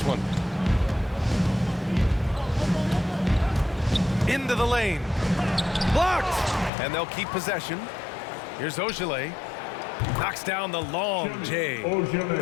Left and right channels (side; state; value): right; drops out; at 6.7 s